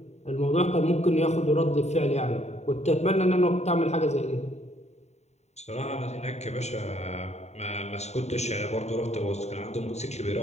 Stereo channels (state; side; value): late; right; 0.32 ms